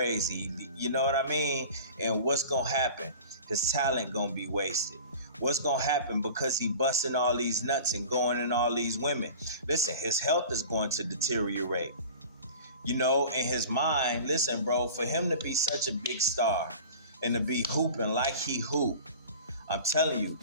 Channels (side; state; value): both; inverted; correlation -0.39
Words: You know what I mean? And what's going to happen? His talent going to be wasted. What's going to happen because he busting all these nuts and going in all these women? Listen, his health is going to deteriorate. In his mind, listen, bro, for him to be such a big star and to be hooping like he hoop, I'm telling you,